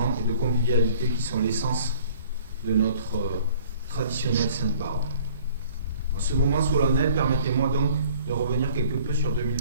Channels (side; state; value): both; inverted; correlation -0.52